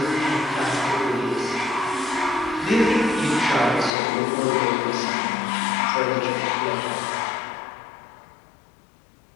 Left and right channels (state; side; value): drops out; right; at 3.9 s